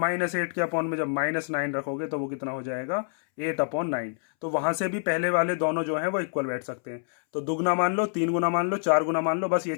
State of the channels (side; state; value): right; silent; 60 dB below the other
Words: के अपॉन में जब -9 रखोगे तो वो कितना हो जाएगा 8/9। तो वहां से भी पहले वाले दोनों जो हैं वो इक्वल बैठ सकते हैं। तो दुगना मान लो, 3 गुना मान लो, 4 गुना मान लो, बस ये